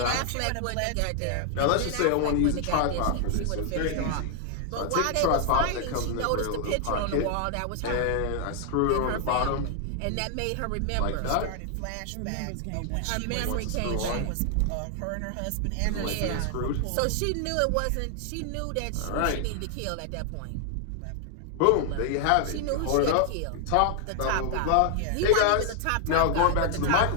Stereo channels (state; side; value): different; both; correlation 0.00